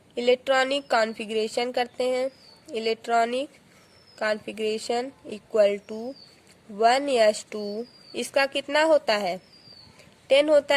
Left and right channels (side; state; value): both; identical; correlation 1.00